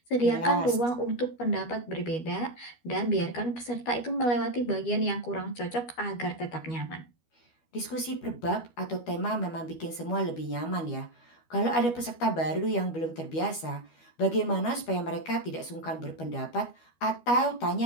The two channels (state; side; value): late; right; 12 ms